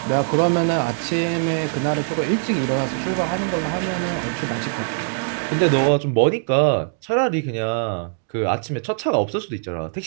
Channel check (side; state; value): left; silent; digital silence